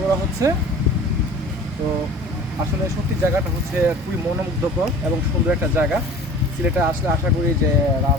করা হচ্ছে। তো আসলে সত্যি জায়গাটা হচ্ছে খুবই মনোমুগ্ধকর এবং সুন্দর একটা জায়গা। সিলেটে আসলে আশা করি যে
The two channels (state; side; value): normal; both; correlation 0.43